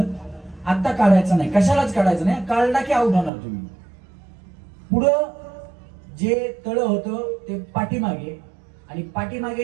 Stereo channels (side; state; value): left; drops out; at 3.3 s